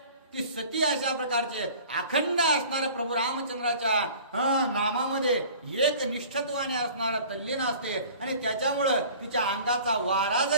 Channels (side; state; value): both; inverted; correlation -0.46